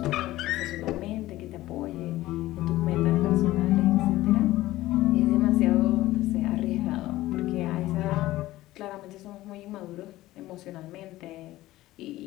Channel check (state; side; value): quieter; right; 16.5 dB